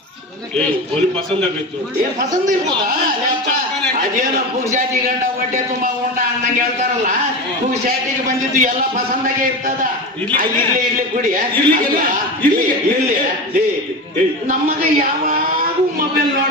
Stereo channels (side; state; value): both; normal; correlation 0.24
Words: ಒಲಿ ಪಸಂದ್ ಆಗೈತು. ಏನ್ ಪಸಂದ್ ಇರ್ಬೋದಾ? ಅದೇನೋ ಪುಗ್ಸಾಟಿ ಗಂಡ ಹೊಟ್ಟೆ ತುಂಬಾ ಉಂಡ ಅನ್ನಂಗೆ ಹೇಳ್ತಾರಲ್ಲ, ಪುಗ್ಸಾಟಿಗೆ ಬಂದಿದ್ದು ಎಲ್ಲ ಪಸಂದಾಗೆ ಇರ್ತದ. ಇರ್ಲಿ ಕುಡಿ. ಇರ್ಲಿ. ನಮ್ಮಗ ಯಾವಾಗೂ ಮೊಬೈಲ್